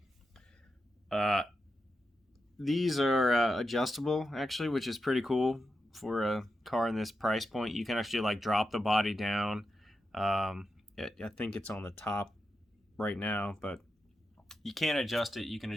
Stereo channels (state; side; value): normal; both; correlation 0.88